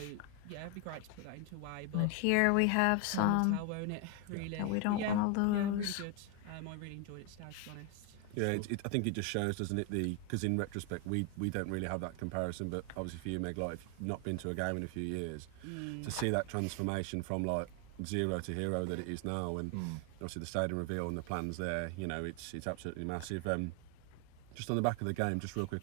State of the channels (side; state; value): both; different; correlation 0.01